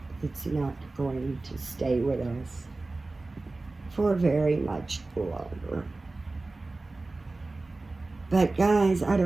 it's not going to stay with us for very much longer. But guys,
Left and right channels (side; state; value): left; quieter; 3.2 dB